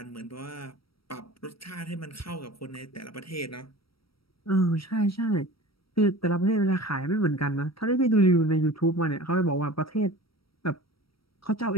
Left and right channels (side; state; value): right; late; 0.75 ms